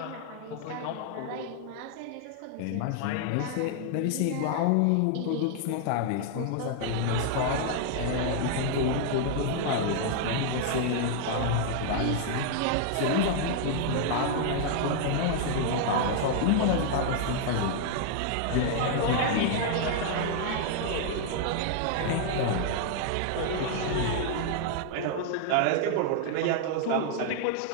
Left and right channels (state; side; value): different; both; correlation 0.00